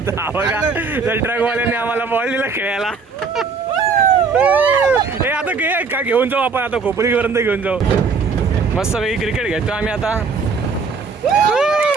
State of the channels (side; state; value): left; quieter; 4.9 dB